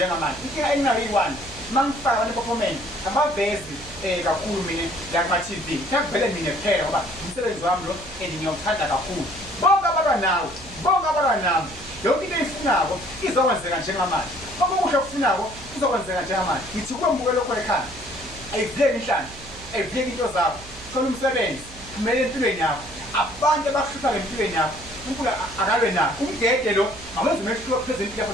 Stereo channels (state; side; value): noise; right; hum, 18 dB below the sound